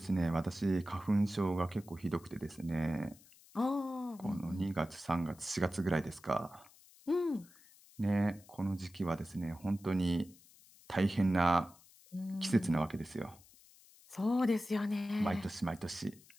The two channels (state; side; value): noise; left; hiss, 25 dB below the sound